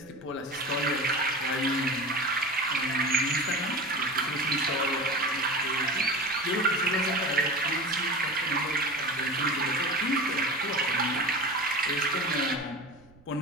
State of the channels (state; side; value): noise; right; rumble, 26 dB below the sound